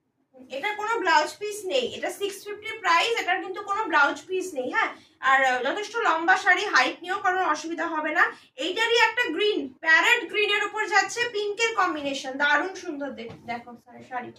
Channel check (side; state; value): both; identical; correlation 1.00